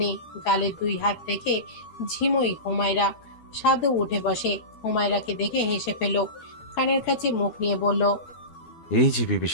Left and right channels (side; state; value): right; late; 12 ms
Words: গালে 2 হাত রেখে ঝিমুই হুমায়রা। সাদও উঠে বসে, হুমায়রাকে দেখে হেসে ফেলল, কানের কাছে মুখ নিয়ে বলল, এই যে বিবি